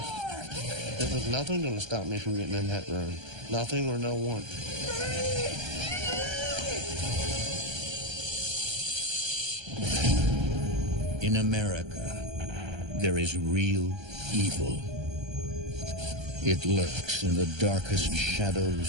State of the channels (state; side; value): late; left; 1.3 ms